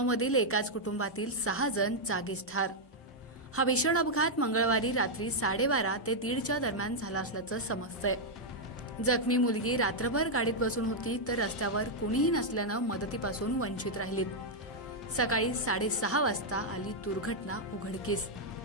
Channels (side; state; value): both; normal; correlation -0.03